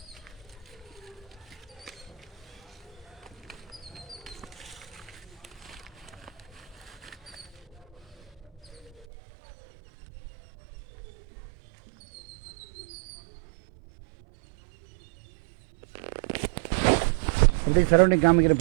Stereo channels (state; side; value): drops out; left; at 9.1 s